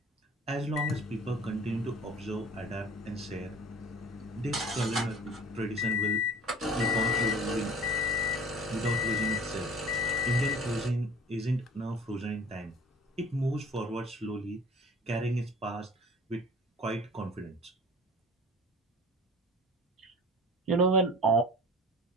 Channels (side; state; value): both; normal; correlation 0.44